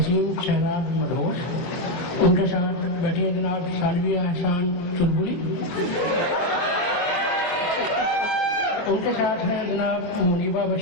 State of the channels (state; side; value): late; right; 23 ms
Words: शहराज मदहोश, उनके साथ बैठी हैं जनाब सालविया एहसान चुलबुली, उनके साथ हैं जनाब मुनीबा